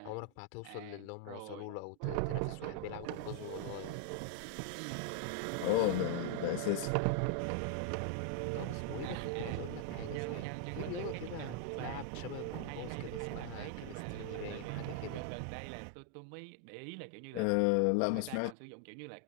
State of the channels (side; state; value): both; different; correlation 0.00